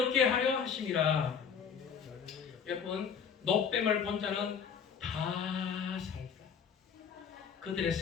하려 하심이라. 여러분, 노뱀을 본 자는 다 살다. 그들의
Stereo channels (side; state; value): right; quieter; 6.8 dB